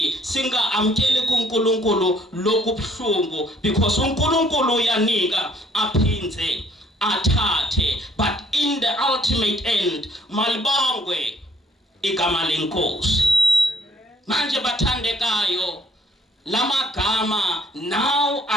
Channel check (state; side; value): normal; both; correlation 0.63